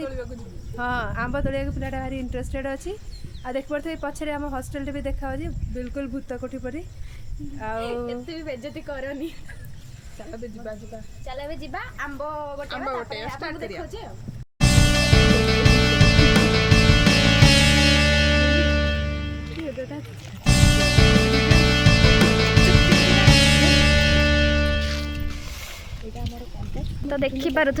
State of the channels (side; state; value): both; identical; correlation 1.00